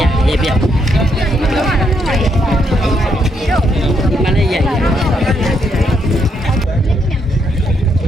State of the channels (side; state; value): both; normal; correlation 0.76